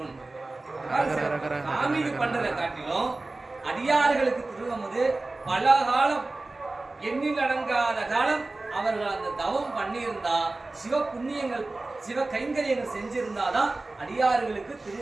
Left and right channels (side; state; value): left; quieter; 3.1 dB